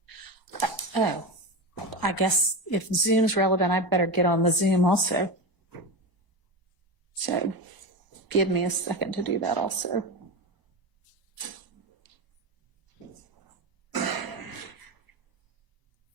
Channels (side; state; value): left; late; 1.0 ms